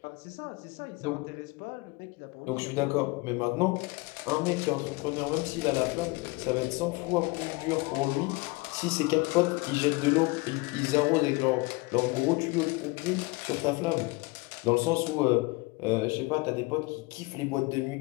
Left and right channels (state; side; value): quieter; right; 24.6 dB